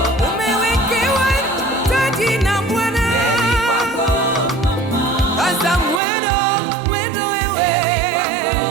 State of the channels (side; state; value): left; drops out; at 6.0 s